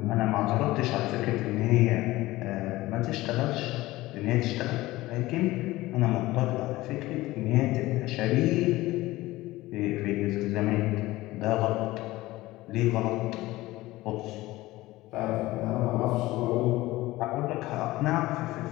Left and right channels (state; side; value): quieter; right; 18.2 dB